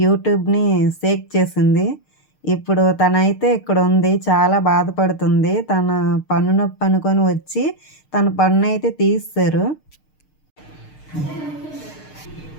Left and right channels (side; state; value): right; late; 6.6 ms